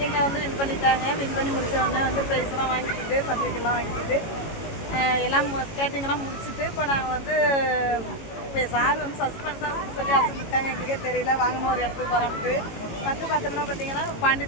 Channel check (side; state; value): right; late; 18 ms